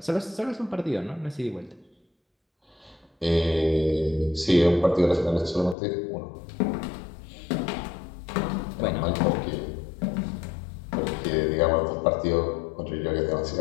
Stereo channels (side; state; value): right; drops out; at 5.8 s